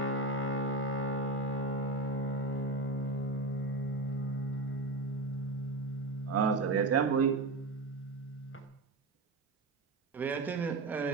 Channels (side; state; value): left; quieter; 3.2 dB